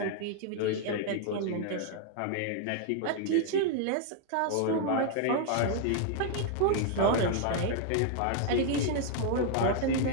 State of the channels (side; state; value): both; different; correlation 0.00